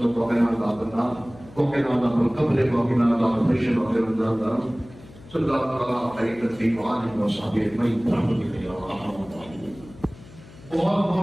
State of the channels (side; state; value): left; noise; hum, 21 dB below the sound